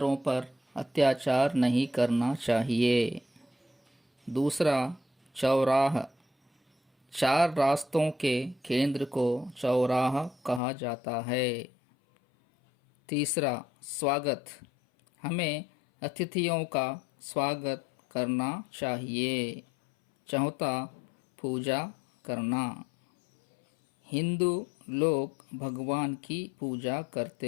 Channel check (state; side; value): drops out; right; at 10.6 s